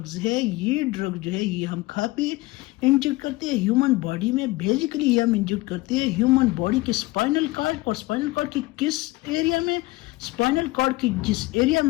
ہے، یہ ڈرگ جو ہے یہ ہم کھا پی انجیکٹ کرتے ہیں ہیومن باڈی میں۔ بیسیکلی یہ ہم انجیکٹ کرتے ہیں ہیومن باڈی کے اسپائنل کارڈ، اور اسپائنل کارڈ کی کس ایریا میں؟ اسپائنل کارڈ کی جس ایریا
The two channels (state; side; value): quieter; right; 20.2 dB